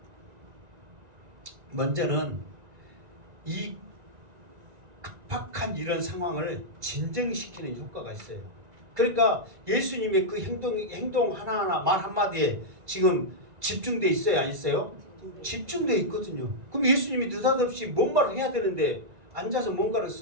먼저는 이 급박한 이런 상황을 진정시키는 효과가 있어요. 그러니까 예수님의 그 행동 하나하나 말 한마디에 지금 집중돼 있어요, 안 있어요? 집중돼 있거든요. 그럼 예수님이 느닷없이 뭔 말을 해야 되는데 앉아서 뭔가를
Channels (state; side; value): late; left; 2.3 ms